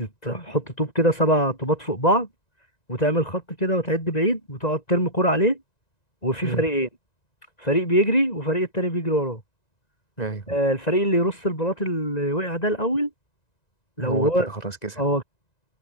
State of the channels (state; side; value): late; right; 1.9 ms